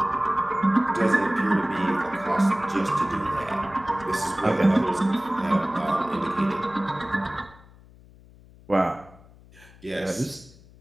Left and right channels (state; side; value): noise; left; hum, 24 dB below the sound